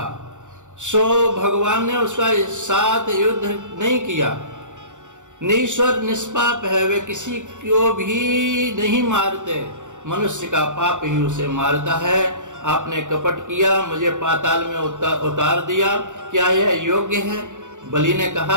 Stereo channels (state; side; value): late; left; 0.85 ms